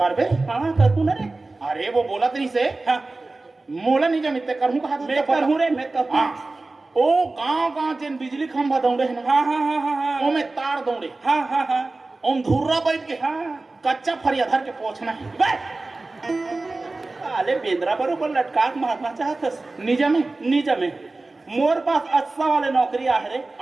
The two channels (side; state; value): left; quieter; 3.3 dB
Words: बे हां कर तू ना रे अरे वो बोला तेरी से हां मोला नहीं जब इतने करूं कहा मैं करूं रे मैं करूं हां ओ गांव जिन बिजली खंभा दौड़े है ना, हाँ हाँ हाँ हाँ हाँ ओमे तार दौड़े, हाँ हाँ हाँ ओम धुर्रा बैठ के हाँ कच्चा फरिया धर के पहुंचना है। अरे बेंद्रा बरोबर लटकाक मारना चाहतस निजा में निजा में मोर पास अच्छा वाले नौकरी आ रे,